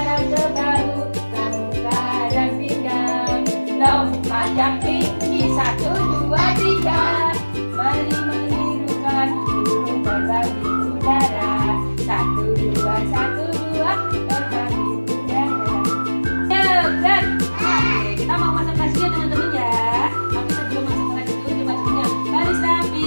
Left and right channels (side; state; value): both; inverted; correlation -1.00